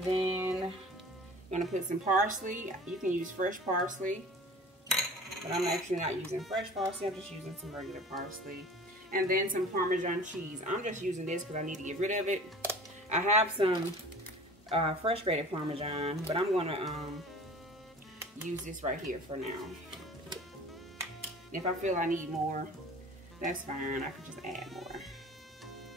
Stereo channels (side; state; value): both; normal; correlation 0.43